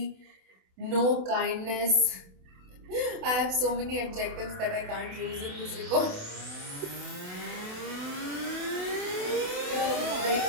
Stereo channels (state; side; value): late; left; 28 ms